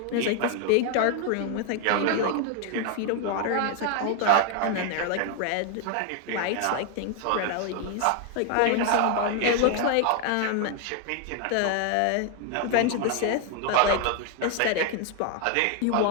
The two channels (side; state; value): both; different; correlation 0.00